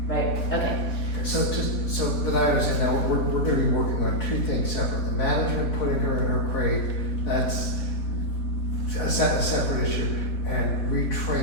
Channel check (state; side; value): late; right; 4.0 ms